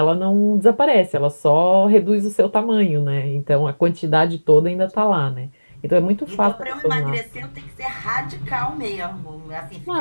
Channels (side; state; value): both; inverted; correlation -1.00